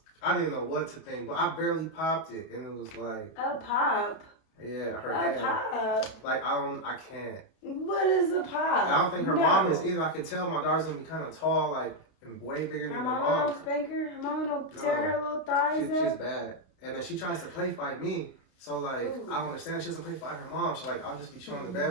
I didn't know what to think, but I barely popped it, and it was like a pop. Yeah, her hand. A pop. Like I can't. What is a pop? I don't think her mom is either. I could tell my daughter's gonna be kind of tall, like and way bigger than her mom. Her mom don't spank her. Her mom don't tear her little thighs up. She's bad, and then she tries to play fight me. So like I don't understand. She doesn't play fight her mom. So like I'll just be chilling in the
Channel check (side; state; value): right; late; 32 ms